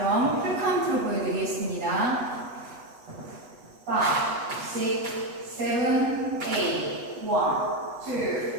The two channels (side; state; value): left; late; 8.2 ms